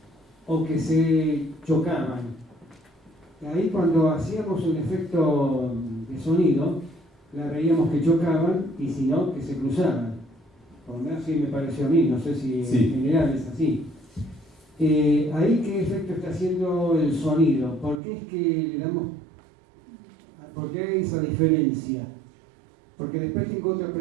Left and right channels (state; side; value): drops out; left; at 18.0 s